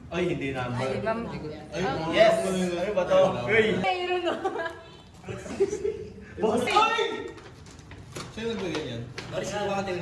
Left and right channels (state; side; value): identical; both; correlation 1.00